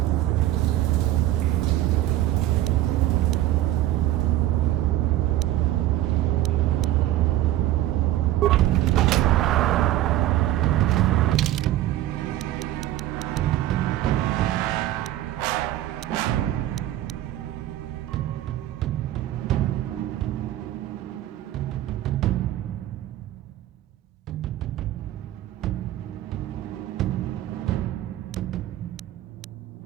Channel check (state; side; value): quieter; left; 14.1 dB